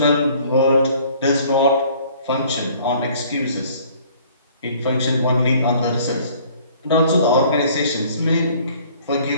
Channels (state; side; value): inverted; both; correlation -0.55